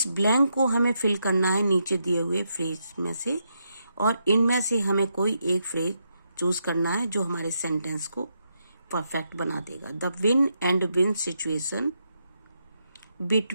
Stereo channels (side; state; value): both; inverted; correlation -0.81